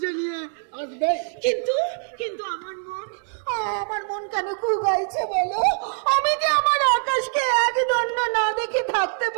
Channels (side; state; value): left; silent; digital silence